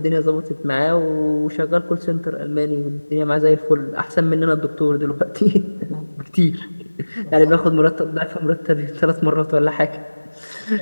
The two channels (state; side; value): inverted; both; correlation -1.00